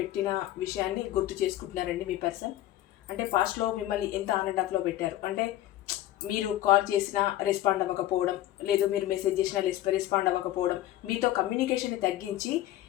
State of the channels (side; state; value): right; quieter; 14.1 dB